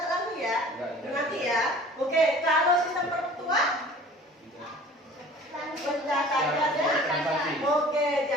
lagi ya, nanti ya. Oke, kalau sistem perpetual pencatatannya, oke,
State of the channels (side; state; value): both; normal; correlation 0.46